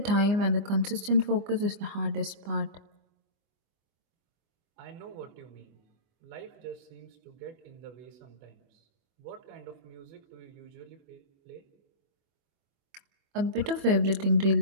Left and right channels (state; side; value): late; left; 24 ms